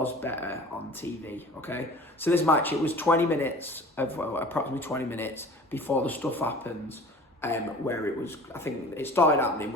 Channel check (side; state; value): both; normal; correlation 0.43